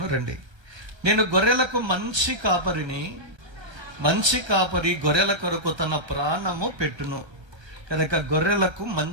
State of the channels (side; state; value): left; late; 1.3 ms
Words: రండి. నేను గొర్రెలకు మంచి కాపరిని, మంచి కాపరి గొర్రెల కొరకు తన ప్రాణము పెట్టును. కనుక గొర్రెలకు